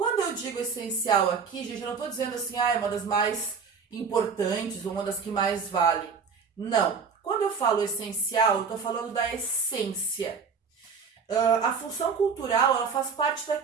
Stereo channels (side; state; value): left; quieter; 5.7 dB